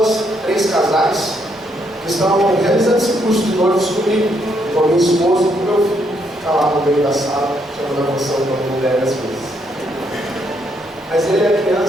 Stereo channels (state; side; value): normal; both; correlation 0.74